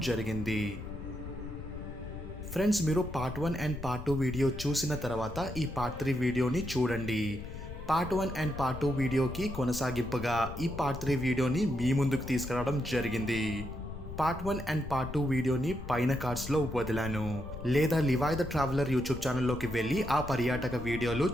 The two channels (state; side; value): noise; left; rumble, 10 dB below the sound